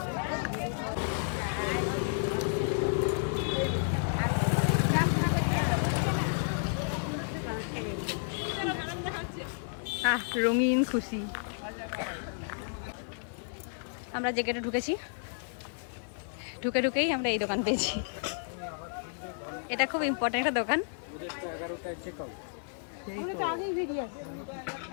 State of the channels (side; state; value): right; silent; 57 dB below the other